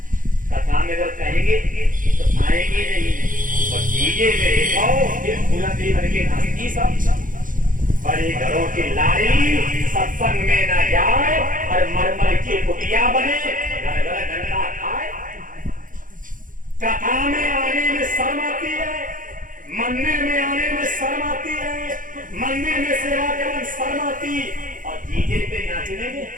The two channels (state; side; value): late; left; 0.39 ms